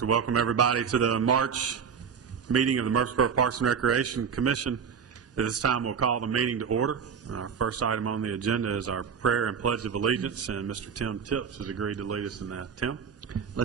welcome everybody to the March meeting of the Murfreesboro Parks and Recreation Commission. At this time, we'll call the meeting to order. Our first item on the agenda is our prayer and pledge of allegiance, and Mr. Tim Tips has agreed to lead us in that. Tim?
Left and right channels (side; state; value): left; quieter; 6.8 dB